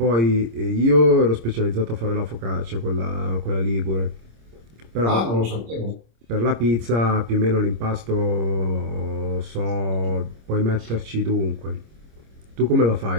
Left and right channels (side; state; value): left; late; 26 ms